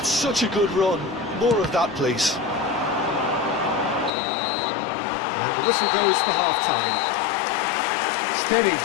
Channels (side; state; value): right; drops out; at 4.1 s